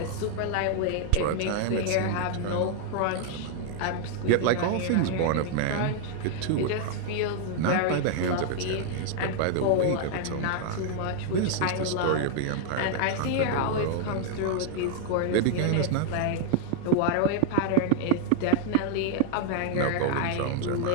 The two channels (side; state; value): both; different; correlation 0.00